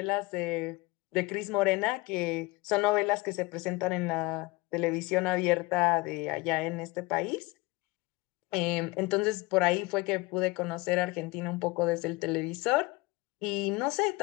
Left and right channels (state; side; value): quieter; right; 22.4 dB